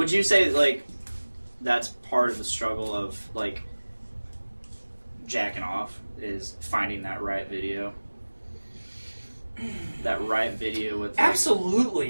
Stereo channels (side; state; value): both; inverted; correlation -1.00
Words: you say, like, that's part of the struggle of, like, jacking off, is finding that right video? That right video with... Like,